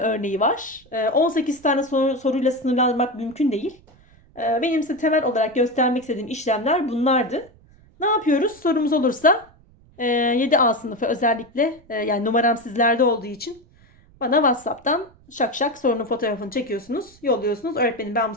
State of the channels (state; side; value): noise; right; rumble, 28 dB below the sound